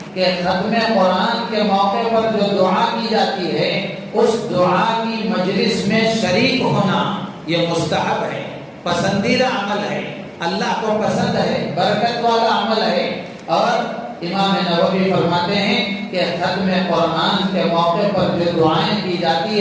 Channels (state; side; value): identical; both; correlation 1.00